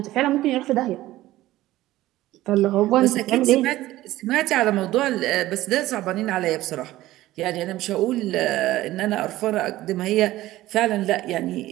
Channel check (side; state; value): left; quieter; 16.0 dB